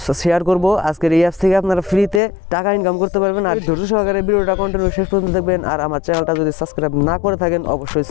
শেয়ার করব, আজকের এই অ্যাপস থেকে আপনারা ফ্রিতে টাকা ইনকাম করতে পারবেন। আর ধৈর্য সহকারে ভিডিওটা কন্টিনিউ শেষ পর্যন্ত দেখবেন। আর আমার চ্যানেলটা যদি সাবস্ক্রাইব না করে থাকেন অবশ্যই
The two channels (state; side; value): drops out; right; at 2.2 s